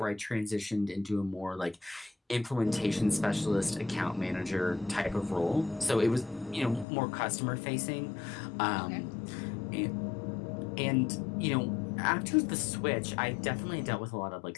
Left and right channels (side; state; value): right; drops out; at 6.9 s